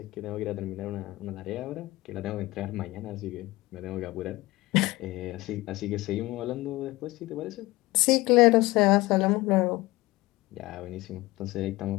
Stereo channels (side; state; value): right; quieter; 19.8 dB